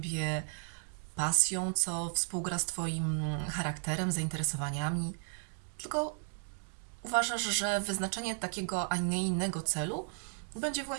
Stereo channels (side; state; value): left; silent; 55 dB below the other